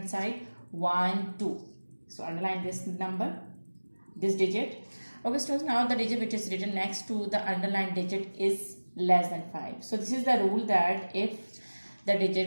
side 1, 2. So underline this number, this digit. Okay students, now the digit which is written next to the underlined digit is less than 5. So this is the rule that if the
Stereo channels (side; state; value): both; inverted; correlation -1.00